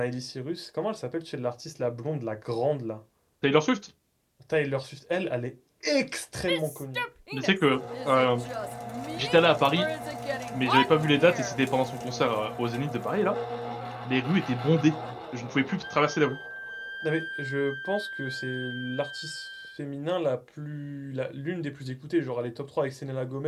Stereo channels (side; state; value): both; identical; correlation 1.00